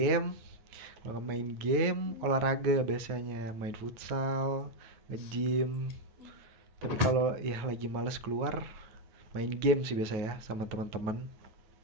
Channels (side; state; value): left; late; 9.3 ms